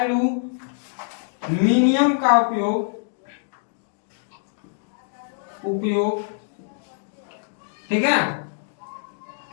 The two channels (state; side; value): silent; right; digital silence